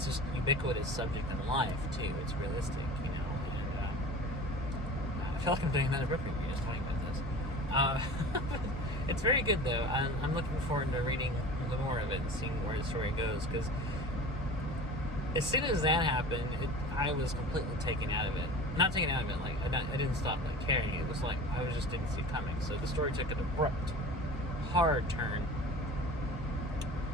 just ubiquitous subject in life too. It's realistic, and I feel like I'm doing another book review just talking about this. It's very good though. I'm looking forward to reading the more of it and seeing where the story goes, because as soon as that happened, I was completely taken out of it. Not taken out of it, like I didn't stop caring. It was like I just didn't see it coming. So the story took an abrupt, hard turn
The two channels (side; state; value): both; normal; correlation 0.37